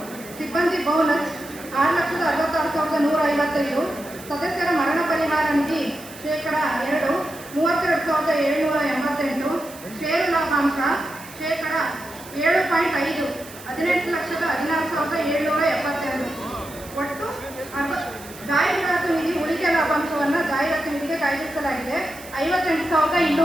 ಸಿಬ್ಬಂದಿ ಬೋನಸ್ 6,66,155. ಸದಸ್ಯರ ಮರಣ ಪರಿಹಾರ ನಿಧಿ 2%, 32,788. ಷೇರು ಲಾಭಾಂಶ 7.5%, 18,16,772. ಒಟ್ಟು ಜಾಹೀರಾತು ನಿಧಿ ಉಳಿಕೆ ಲಾಭಾಂಶವನ್ನು ಜಾಹೀರಾತು ನಿಧಿಗೆ ಕಾಯ್ದಿರಿಸಲಾಗಿದೆ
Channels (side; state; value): right; noise; hiss, 18 dB below the sound